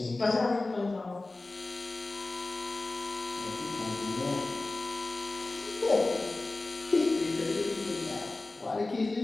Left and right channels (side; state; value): right; quieter; 3.1 dB